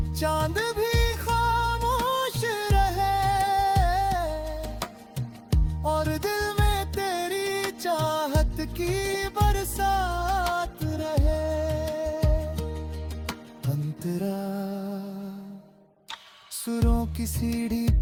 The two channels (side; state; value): both; identical; correlation 1.00